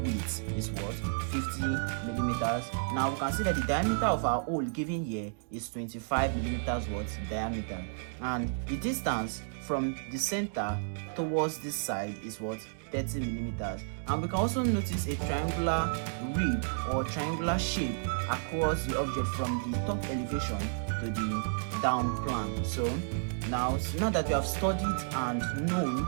width is what? 50 millimeters. Now you can see that the diameter of our hole given here is 25 millimeters what? Diameter. And the distance from the center towards this side is what? 30 millimeters. And we can also notice a triangular rib or triangular shape across the object from the top elevation to the down plane. So now that we have studied and known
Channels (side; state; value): left; silent; digital silence